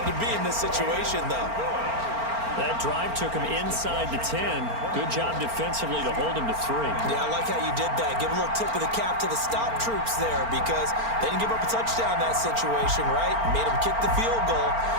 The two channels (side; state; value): left; late; 4.4 ms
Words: to be in this situation, though? That drive took him inside the 10. Good job defensively to hold him to 3. Yeah, I like how you did that. Give a little tip of the cap to the stop troops there because they didn't give up a touchdown in that situation, right? Made them kick the field goal.